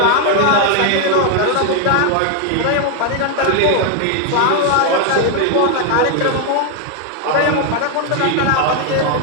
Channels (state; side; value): different; both; correlation 0.01